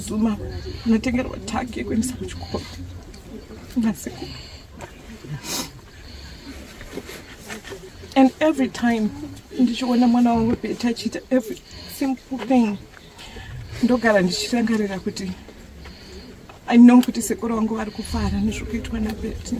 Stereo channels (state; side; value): identical; both; correlation 1.00